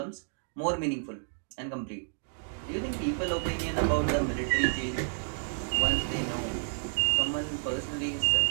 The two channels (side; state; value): left; silent; digital silence